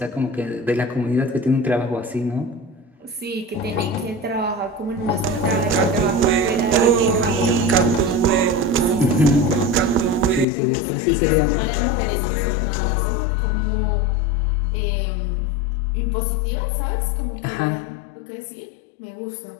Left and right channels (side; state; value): right; drops out; at 10.5 s